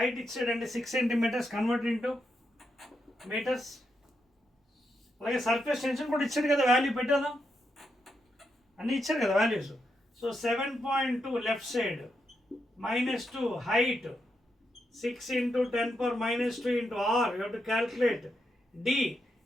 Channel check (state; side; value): normal; both; correlation 0.83